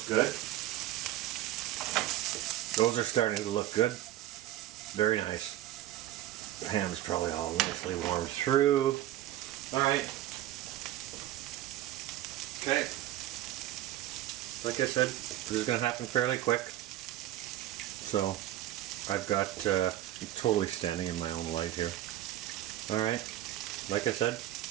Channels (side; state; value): left; quieter; 13.7 dB